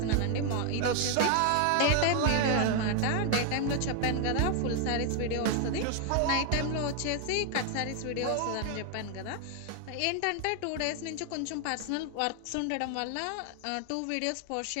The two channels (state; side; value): different; both; correlation 0.00